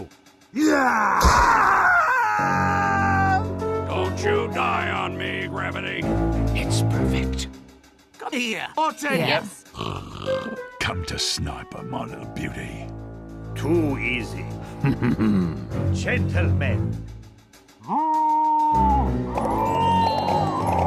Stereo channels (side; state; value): both; identical; correlation 1.00